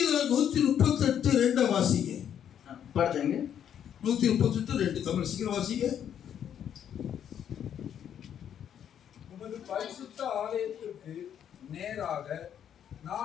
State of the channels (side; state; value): right; quieter; 9.3 dB